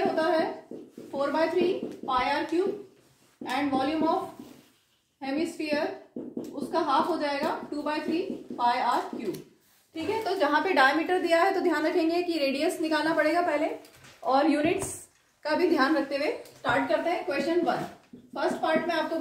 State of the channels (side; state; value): both; identical; correlation 1.00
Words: होता है 4/3 pi r cube and volume of hemisphere उसका हाफ हो जाएगा 2/3 पाई आर क्यूब। ठीक है, तो जहां पे डायमीटर दिया है तो ध्यान रखेंगे कि रेडियस निकालना पड़ेगा पहले, और यूनिट्स का भी ध्यान रखते हुए स्टार्ट करते हैं। क्वेश्चन 1 फर्स्ट पार्ट में आपको